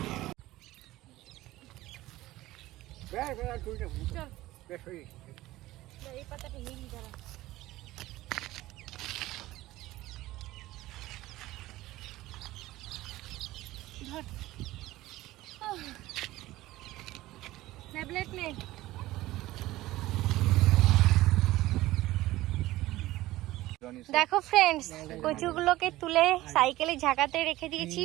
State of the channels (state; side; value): quieter; left; 17.0 dB